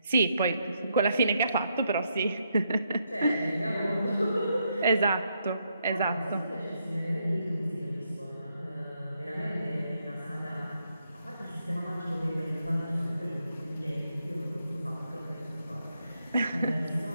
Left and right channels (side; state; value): both; inverted; correlation -0.78